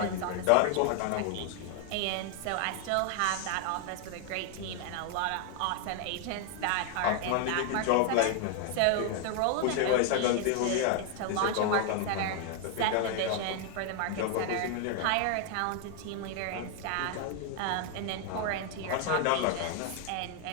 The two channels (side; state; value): both; different; correlation 0.01